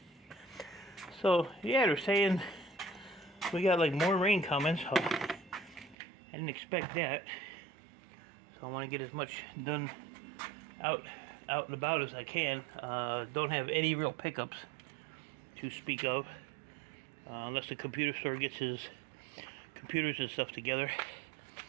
So, yeah, they're saying we got like more rain coming, so I didn't expect that. So I want to get as much done out and about as I can. Don't have any real pickups to speak of, unless the computer store gets his computers and stuff together.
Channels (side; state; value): left; drops out; at 6.0 s